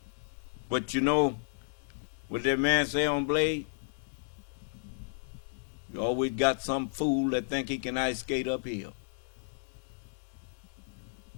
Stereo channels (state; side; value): silent; right; digital silence